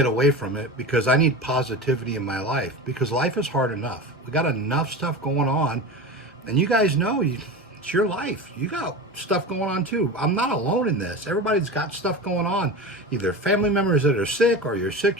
away from it because I need positivity in my life, because life is hard enough. We got enough stuff going on, and you guys know it's your life. You got stuff going on too. I'm not alone in this. Everybody's got stuff going on, either family members that are sick, or you're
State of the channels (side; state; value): both; normal; correlation 0.28